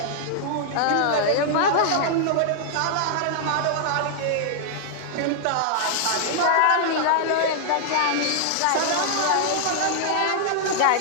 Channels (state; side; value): different; both; correlation -0.01